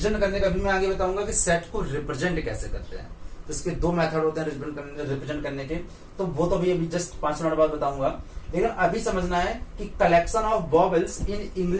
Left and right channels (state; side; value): identical; both; correlation 1.00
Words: करने का भी मैं आगे बताऊंगा कि सेट को रिप्रेजेंट कैसे करते हैं। तो इसके 2 मेथड होते हैं रिप्रेजेंट करने के, तो वो तो अभी जस्ट 5 मिनट बाद बताऊंगा। लेकिन अभी समझना है कि collection of vowels in